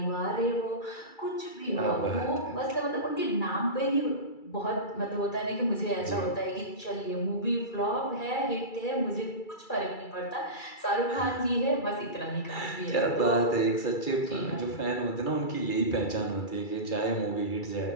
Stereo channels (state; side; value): late; right; 2.3 ms